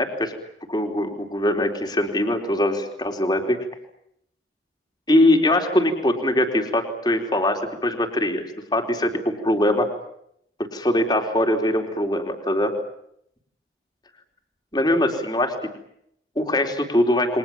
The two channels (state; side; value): normal; both; correlation 0.58